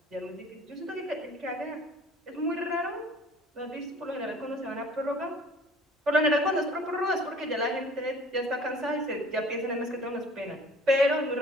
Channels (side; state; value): both; normal; correlation 0.49